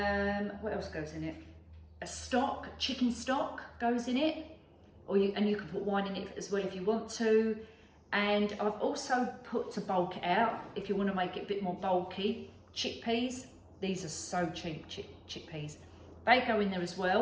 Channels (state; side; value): identical; both; correlation 1.00